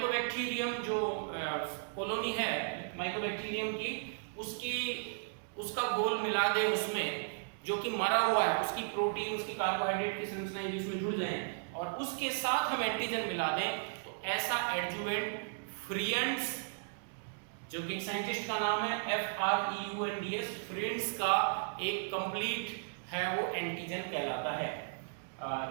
जो कॉलोनी है माइकोबैक्टीरियम की, उसका घोल मिला दे उसमें, जो कि मरा हुआ है, उसकी प्रोटीन, उसकी कार्बोहाइड्रेट की संरचनाएं जिसमें जुड़ जाएं और उसके साथ हम एंटीजन मिला दें, तो ऐसा एडजुवेंट फ्रीएंड्स, जो कि एक साइंटिस्ट का नाम है FREUNDS, फ्रीएंड्स का एक कंप्लीट है वो एंटीजन कहलाता है।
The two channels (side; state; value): left; silent; digital silence